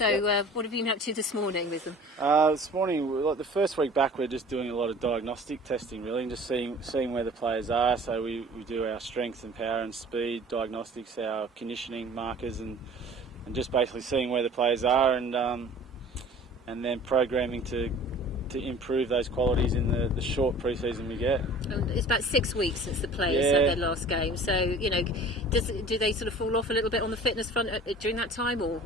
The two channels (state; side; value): normal; both; correlation 0.46